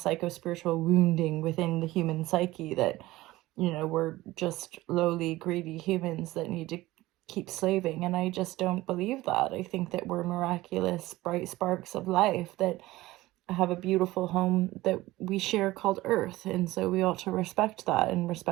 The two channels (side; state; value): left; quieter; 18.0 dB